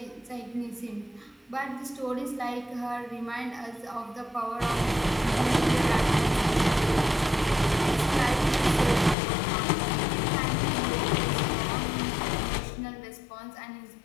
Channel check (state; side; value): drops out; right; at 9.2 s